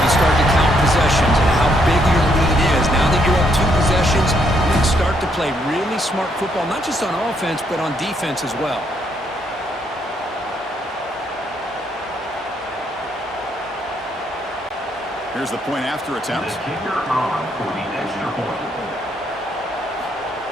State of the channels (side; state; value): both; normal; correlation 0.73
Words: you start to count possessions and how big your lead is. Now that you're up 2 possessions, you can start to play really smart football, not just on offense, but on defense as well. Here's the point after attempt. The kicker on for the extra point.